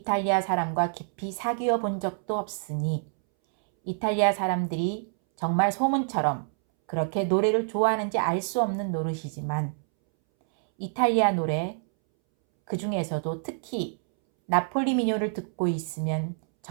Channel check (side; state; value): left; silent; 60 dB below the other